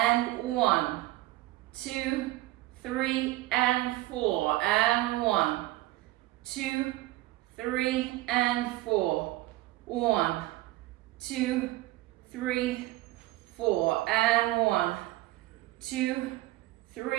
1, 2, 3, and 4, and 1, 2, 3, and 4, 1, 2, 3, 4, and 1, 2,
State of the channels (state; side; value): quieter; left; 17.9 dB